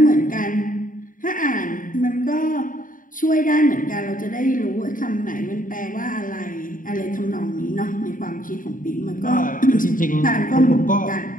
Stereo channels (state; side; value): late; right; 0.39 ms